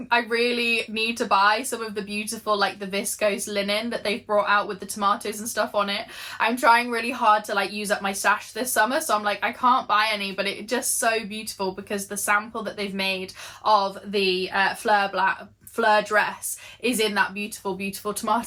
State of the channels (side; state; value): both; identical; correlation 1.00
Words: really need to buy some of the beautiful like the viscose linen that they've brought out with the tomatoes and stuff on it. I'm trying really hard to like use up my stash this summer, so I'm like, I can't buy any, but it's just so beautiful because the sample that they've made of the Fleur dress is in that beautiful, beautiful